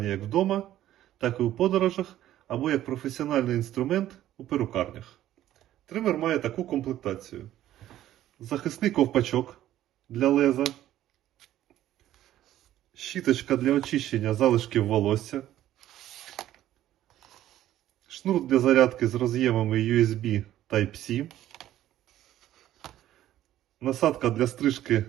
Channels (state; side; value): quieter; left; 13.0 dB